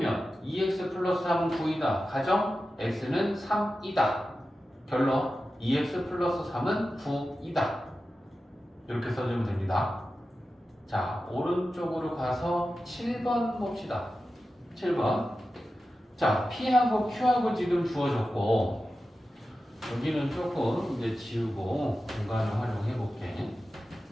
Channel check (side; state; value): both; normal; correlation 0.93